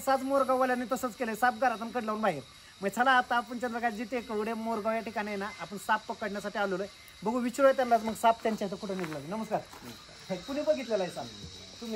मोरगाववाल्यांनी तसंच केलं, साप घरातून कड लावून बाहेर. मग चला आता आपण चंद्रकांतजी टेकवडे मोरगाव या ठिकाणी आहे ना, आपण साप पकडण्यासाठी आलेलो आहे. बघू विचारूया त्यांना मग साप त्यांच्या इथं कुठं निघाला. नमस्कार. कुणी बघितलेला आहे साप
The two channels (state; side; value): identical; both; correlation 1.00